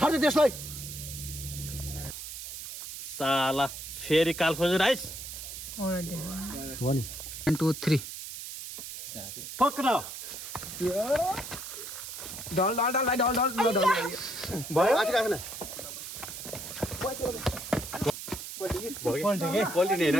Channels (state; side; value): noise; right; hiss, 9 dB below the sound